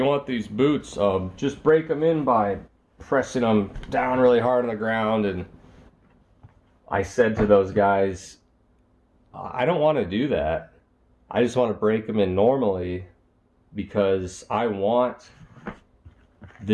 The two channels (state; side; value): identical; both; correlation 1.00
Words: want these boots, just break them in by pressing them down really hard on the ground. And I said to those guys, I don't want to do that. I just want to break them in normally, because I want